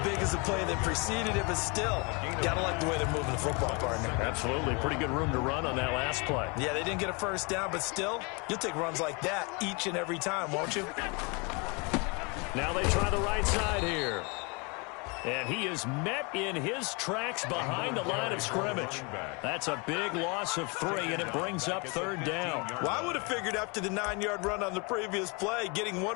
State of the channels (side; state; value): right; quieter; 30.8 dB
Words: big as the play that preceded it, but still, gotta like the way they're moving the football, partner. Absolutely. Pretty good room to run on that last play. Yeah, they didn't get a first down, but still, you'll take runs like that each and every time, won't you? Now they try the right side here. And he is met in his tracks behind the line of scrimmage. That's a big loss of 3, and it brings up 3rd down. Well, I would have figured after the 9-yard run on the previous play, getting